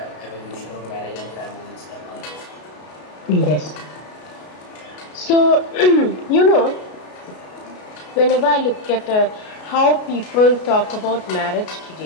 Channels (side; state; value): right; late; 33 ms